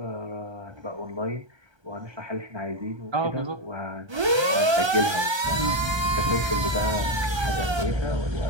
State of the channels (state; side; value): late; left; 1.3 ms